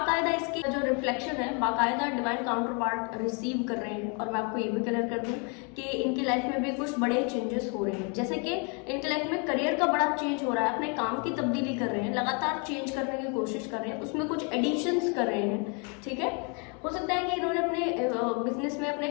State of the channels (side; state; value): right; quieter; 35.6 dB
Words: इसकी जो रिफ्लेक्शन है बाकायदा डिवाइन काउंटर पार्ट रिसीव कर रहे हैं। और मैं आपको ये भी क्लियर कर दूं कि इनकी लाइफ में भी कुछ बड़े चेंजेस हो रहे हैं, जैसे कि इनकी लाइफ में करियर का बड़ा चेंज हो रहा है, अपने काम की तब्दीली कर रहे हैं, लगातार चेंज करने की कोशिश कर रहे हैं, उसमें कुछ एडिशंस कर रहे हैं। ठीक है, हो सकता है कि इन्होंने अपने बिजनेस में अपने